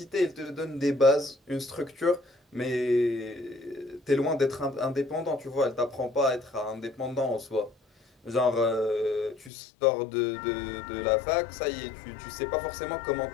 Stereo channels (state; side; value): drops out; right; at 9.5 s